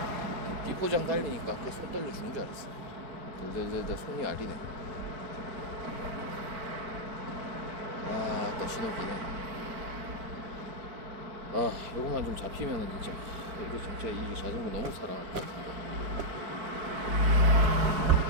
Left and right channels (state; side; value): late; left; 4.5 ms